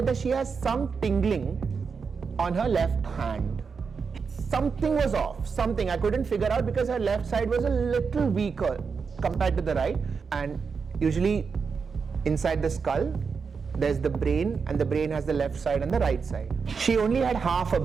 that she has some tingling on her left hand. Something was off, something I couldn't figure out because her left side was a little weaker compared to the right. And usually inside the skull, there's the brain, and the brain has the left side and the right side. She only had half a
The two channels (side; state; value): left; quieter; 5.5 dB